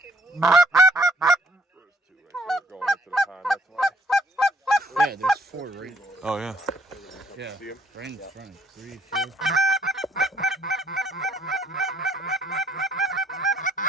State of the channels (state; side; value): normal; both; correlation 0.66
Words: two right there going into the pond, that's why. Yeah, there's 4 right. Oh, yeah. Yeah, See 'em? right in front. 3, 4.